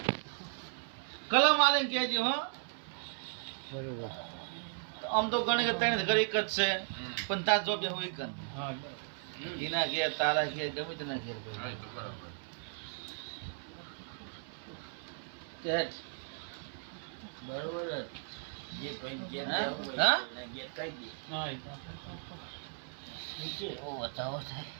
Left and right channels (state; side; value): silent; left; 54 dB below the other